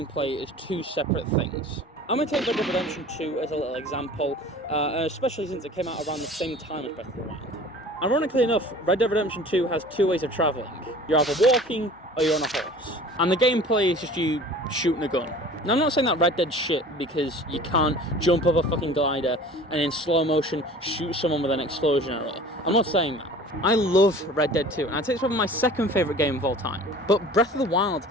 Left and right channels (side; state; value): both; normal; correlation 0.44